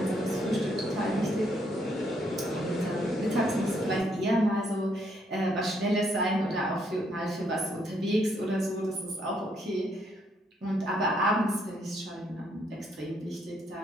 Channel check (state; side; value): normal; both; correlation 0.72